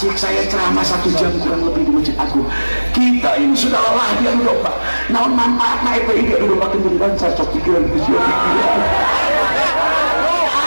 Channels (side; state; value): both; inverted; correlation -1.00